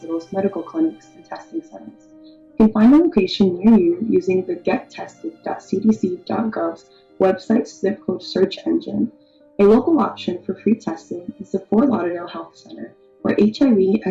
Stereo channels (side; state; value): both; identical; correlation 1.00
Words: medical clinics, and testing centers. You can find a location near you using the gettested.cdc.gov's website zip code search engine. A local option for free testing is the Fort Lauderdale Health Center, where HIV,